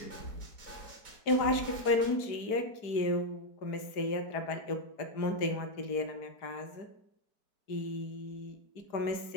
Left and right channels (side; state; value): right; late; 4.9 ms